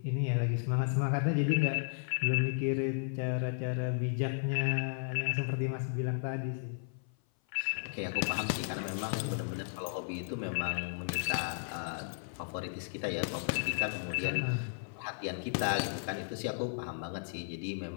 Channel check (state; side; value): silent; right; 55 dB below the other